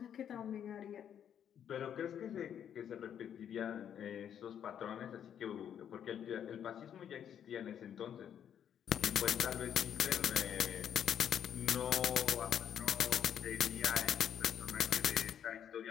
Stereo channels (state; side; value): quieter; right; 9.2 dB